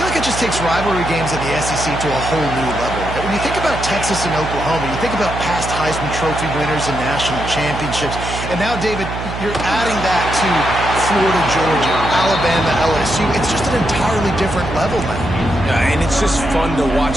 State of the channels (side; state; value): right; noise; hum, 7 dB below the sound